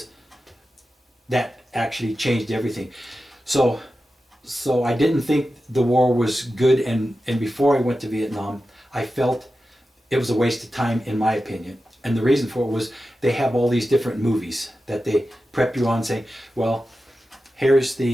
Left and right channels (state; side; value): normal; both; correlation 0.92